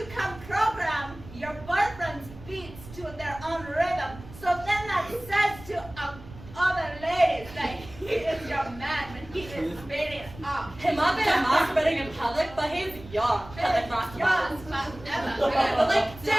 can program your boyfriend's beats to their own rhythm. So then that says to other ladies that he is your man when he is beating up. He might be masturbating in public, but he's young. Public masturbating. Okay, but like,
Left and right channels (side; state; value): right; noise; rumble, 17 dB below the sound